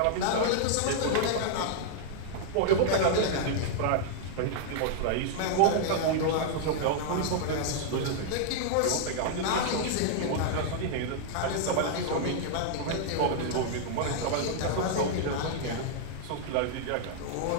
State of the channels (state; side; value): different; both; correlation -0.01